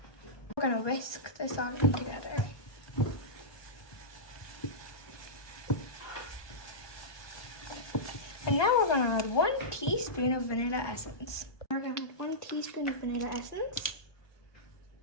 We're going to whisk this all in together. And now we're going to add 1 teaspoon of vanilla essence. We're going to add 1 teaspoon of vanilla essence.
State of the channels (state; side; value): late; right; 1.2 ms